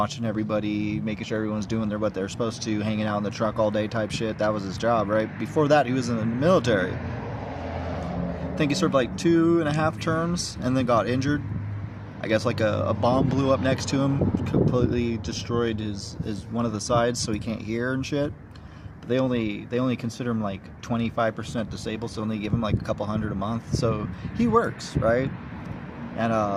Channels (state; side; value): identical; both; correlation 1.00